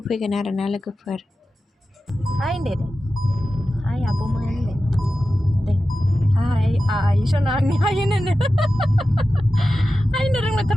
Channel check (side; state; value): both; normal; correlation 0.93